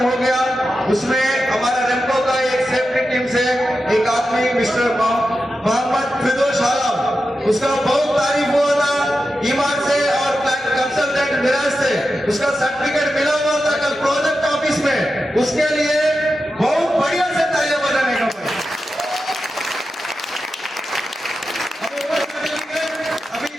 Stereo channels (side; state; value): both; normal; correlation 0.91